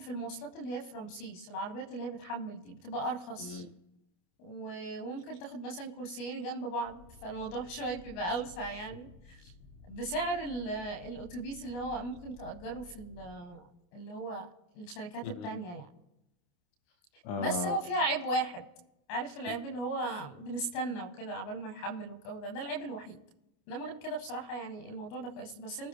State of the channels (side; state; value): right; late; 29 ms